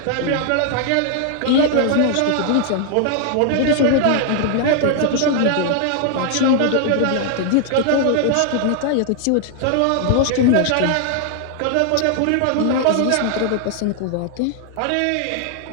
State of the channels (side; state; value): both; different; correlation 0.00